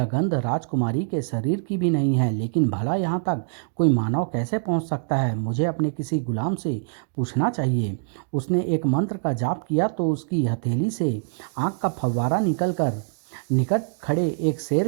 गंध राजकुमारी के शरीर की भी नहीं है, लेकिन भला यहाँ तक कोई मानव कैसे पहुँच सकता है? मुझे अपने किसी गुलाम से पूछना चाहिए। उसने एक मंत्र का जाप किया तो उसकी हथेली से आग का फव्वारा निकलकर निकट खड़े एक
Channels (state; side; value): silent; left; digital silence